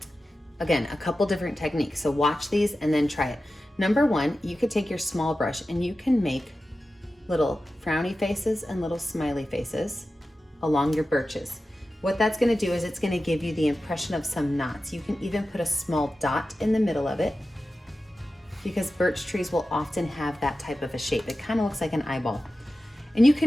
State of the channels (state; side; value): normal; both; correlation 0.93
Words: Again, a couple different techniques. So watch these and then try it. Number one, you could take your small brush and you can make little frowny faces and little smiley faces along your birches. What that's gonna do is it's gonna give you the impression of some knots. You can even put a small dot in the middle of it, because birch trees will often have that type of a shape. It kind of looks like an eyeball. And you